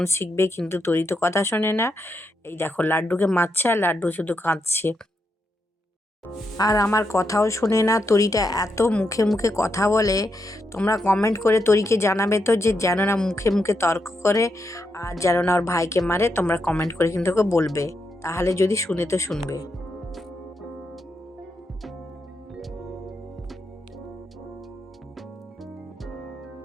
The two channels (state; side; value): normal; both; correlation 0.82